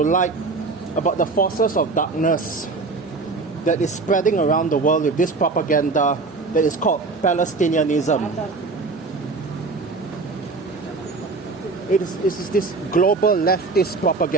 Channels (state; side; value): quieter; left; 3.9 dB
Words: about the forces of darkness that is spreading around the world with this propaganda that is called Palestinianism. It is this global leftist